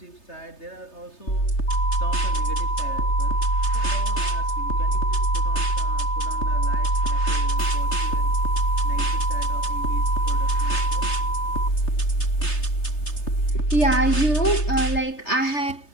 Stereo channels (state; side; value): late; right; 3.3 ms